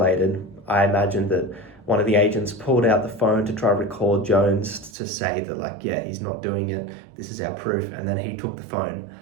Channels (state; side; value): drops out; left; at 4.9 s